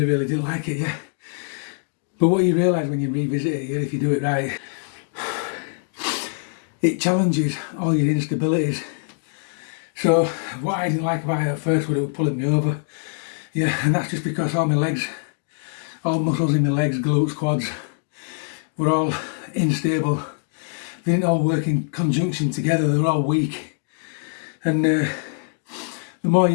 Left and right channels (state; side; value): silent; right; digital silence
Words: didn't like it, yeah. But what you realise when you revisit it, yeah, if you do it right, it challenges all your instabilities. So what I didn't like about it at first was it was pulling me over. Yeah, and that's just because all my all muscles in my legs, glutes, quads, were all unstable. They didn't all work in conjunction together, they were all weak. And the more